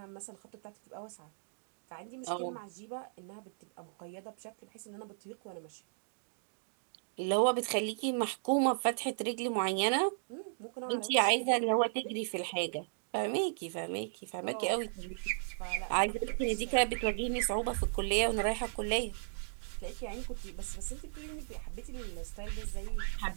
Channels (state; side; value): silent; left; digital silence